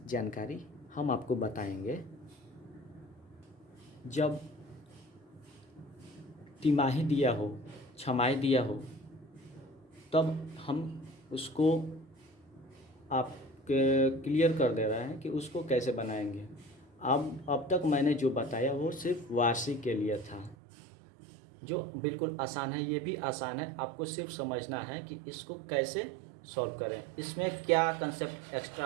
जानकारी हम आपको बताएंगे। जब तिमाही दिया हो छमाही दिया हो तब हम उसको आप क्लियर कर दे रहे हैं कि उसको कैसे बनाएंगे। अब तक मैंने जो बताया वो सिर्फ वार्षिक के लिए था, जो बिल्कुल आसान है। ये भी आसान है, आपको सिर्फ समझना है कि इसको कैसे सॉल्व करें, इसमें क्या कंसेप्ट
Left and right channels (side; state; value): left; drops out; at 20.6 s